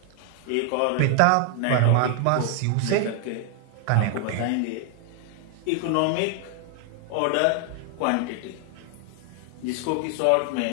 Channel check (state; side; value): different; both; correlation 0.00